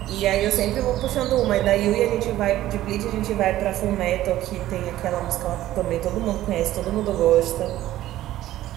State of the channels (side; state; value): left; quieter; 14.3 dB